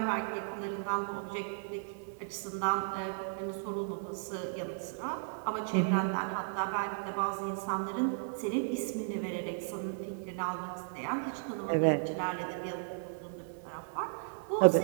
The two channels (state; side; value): silent; left; digital silence